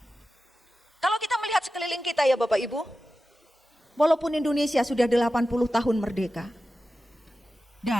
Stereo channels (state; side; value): normal; both; correlation 0.93